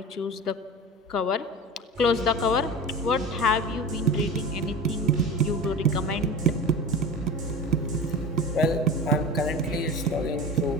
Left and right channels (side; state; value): both; normal; correlation 0.31